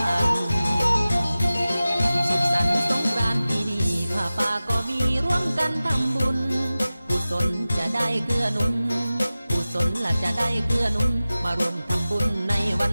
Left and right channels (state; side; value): inverted; both; correlation -0.96